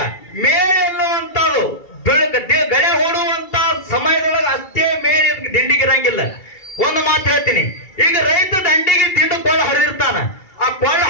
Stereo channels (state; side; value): late; right; 2.3 ms